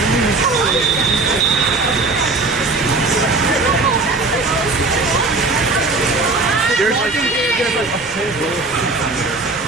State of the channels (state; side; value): quieter; left; 3.5 dB